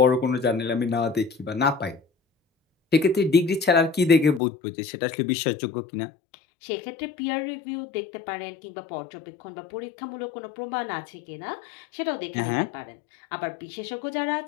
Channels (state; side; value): drops out; right; at 4.4 s